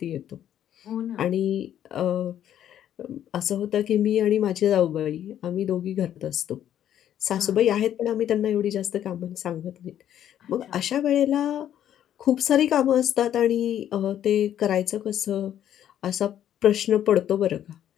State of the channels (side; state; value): right; quieter; 10.7 dB